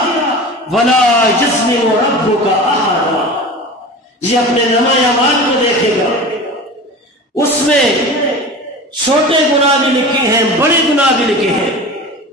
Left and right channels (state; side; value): normal; both; correlation 0.34